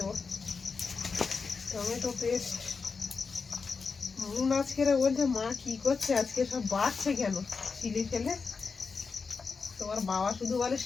টমেটো পেস্ট। মুন আজকে বলছে মা কি করছে আজকে, সব বাড়ছে কেন চিলি ফেলে। তোমার বাবা শুধু বলে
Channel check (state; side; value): quieter; right; 4.9 dB